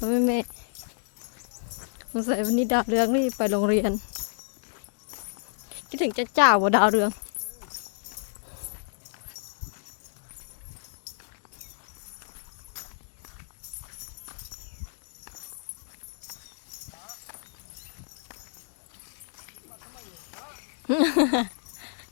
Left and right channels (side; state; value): right; silent; digital silence